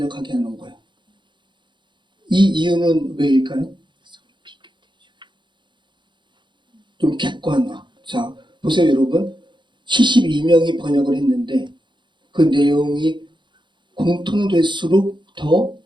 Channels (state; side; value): late; left; 0.23 ms